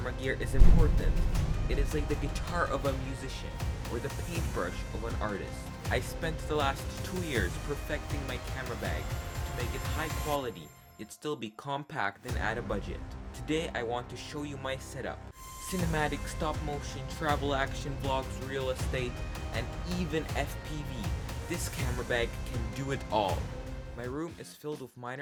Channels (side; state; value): both; identical; correlation 1.00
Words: gear is important. It is like the guitar of a musician or the paintbrush of an artist. I spent the last 2 years perfecting my camera bag to make it high quality, yet still be compact and at a budget. Today I want to show you my setup. Cinematic, stop motion, travel action, vlogs, real estate, and even FPV. This camera bag can do it all. My room is filled with